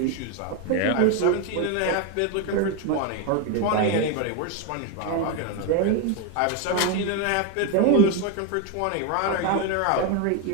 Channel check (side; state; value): both; different; correlation 0.02